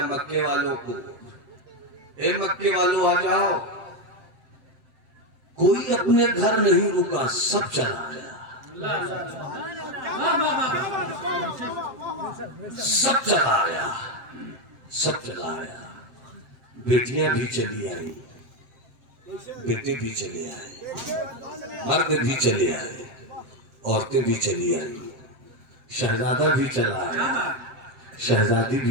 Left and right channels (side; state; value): left; late; 7.6 ms